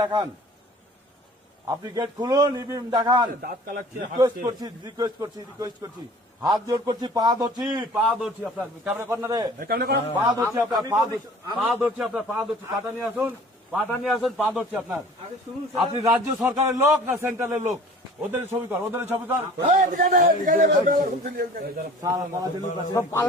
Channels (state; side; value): normal; both; correlation 0.47